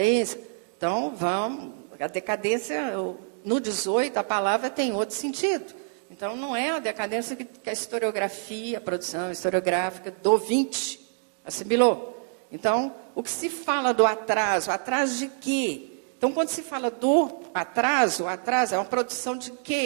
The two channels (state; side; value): silent; left; 60 dB below the other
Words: Então, a decadência, no 18, a palavra tem outro sentido. Então, não é a decadência que a historiografia, a produção historiográfica do 20 assimilou. Então, o que se fala do atraso de quê? Então, quando se fala do atraso é uma produção de